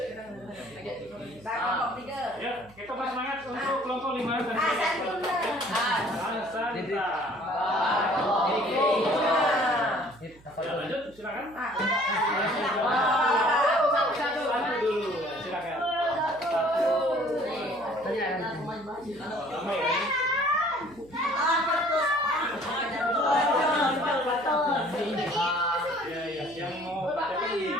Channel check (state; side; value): noise; right; hum, 25 dB below the sound